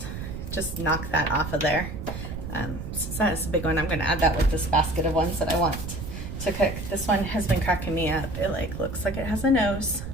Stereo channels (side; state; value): right; noise; rumble, 8 dB below the sound